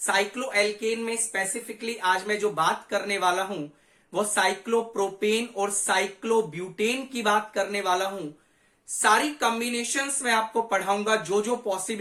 में स्पेसिफिकली आज मैं जो बात करने वाला हूं वो साइक्लोप्रोपेन और साइक्लोब्यूटेन की बात करने वाला हूं। सारी कॉम्बिनेशंस में आपको पढ़ाऊंगा, जो जो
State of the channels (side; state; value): both; identical; correlation 1.00